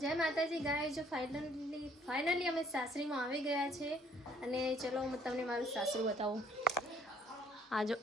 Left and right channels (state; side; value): normal; both; correlation 0.62